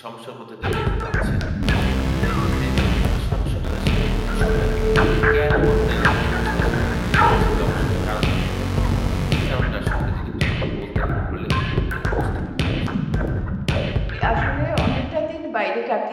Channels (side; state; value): both; identical; correlation 1.00